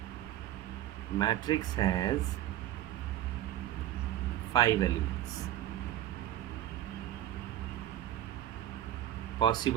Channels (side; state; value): left; quieter; 12.8 dB